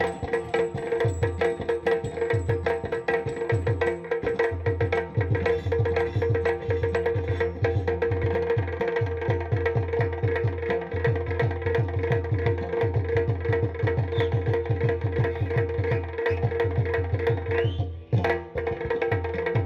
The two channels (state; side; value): identical; both; correlation 1.00